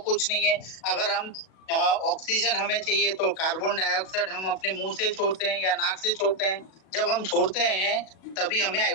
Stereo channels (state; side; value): late; right; 37 ms